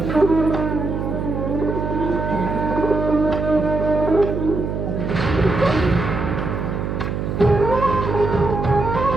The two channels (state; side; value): noise; right; hum, 3 dB below the sound